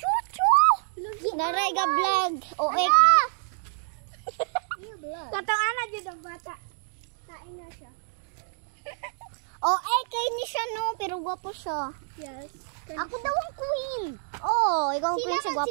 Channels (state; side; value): silent; left; digital silence